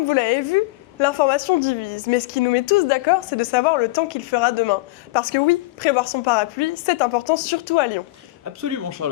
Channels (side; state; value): right; quieter; 20.8 dB